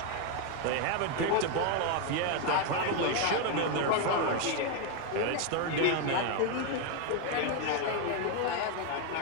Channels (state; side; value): different; both; correlation 0.01